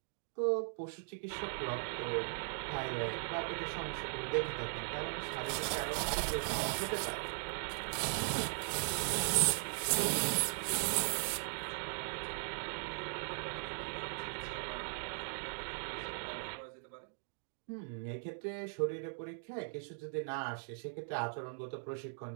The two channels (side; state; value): left; silent; digital silence